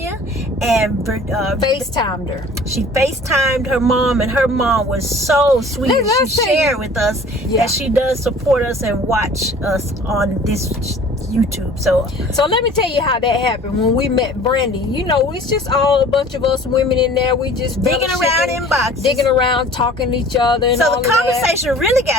and FaceTimed her. She FaceTimed her mom, and her mom was so sweet. Let's She shared with us that she does support us and watch us on this YouTube. So let me tell you how that happened. When we met Brandy, you know, it's just all a bunch of us women in there. We just digging around in boxes, digging around, talking to each other. And so all the of conversation really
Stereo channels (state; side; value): normal; both; correlation 0.47